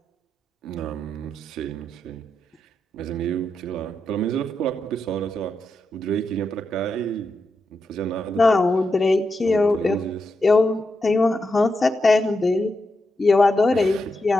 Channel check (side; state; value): both; normal; correlation 0.86